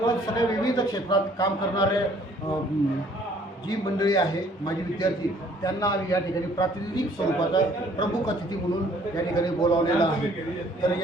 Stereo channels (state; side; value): normal; both; correlation 0.59